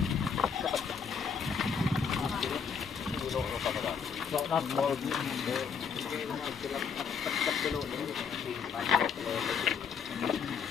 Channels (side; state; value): right; quieter; 6.4 dB